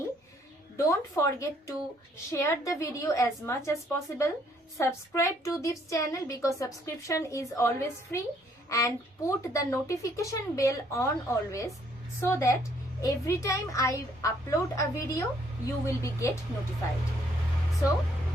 don't forget to share the video as much as possible. Subscribe to this channel, because subscription is always free, and put the notification bell on always, so that every time I upload a video you will be get notified. So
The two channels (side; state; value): both; normal; correlation 0.66